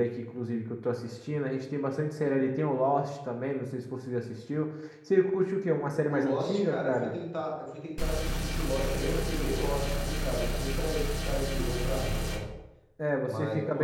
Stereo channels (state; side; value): identical; both; correlation 1.00